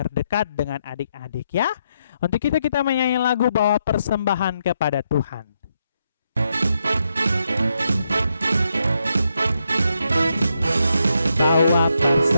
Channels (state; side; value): inverted; both; correlation -0.80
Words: dengan adik-adik ya. Untuk itu kita menyanyi lagu Bawa Persembahan Kepada Tuhan. Bawa